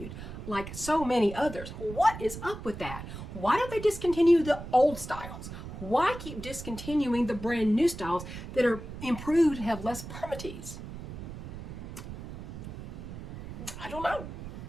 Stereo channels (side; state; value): right; noise; rumble, 10 dB below the sound